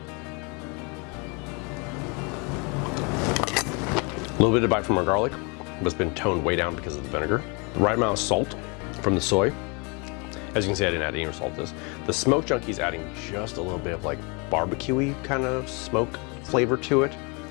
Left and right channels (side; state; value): right; quieter; 31.5 dB